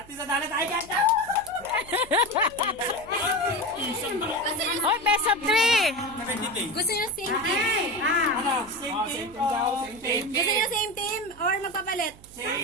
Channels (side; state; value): right; noise; hum, 23 dB below the sound